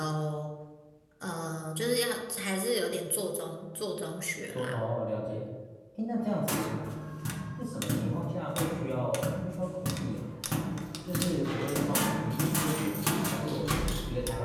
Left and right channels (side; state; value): both; identical; correlation 1.00